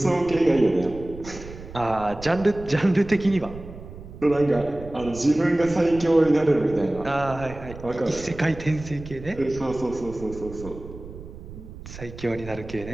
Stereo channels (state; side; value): noise; right; rumble, 14 dB below the sound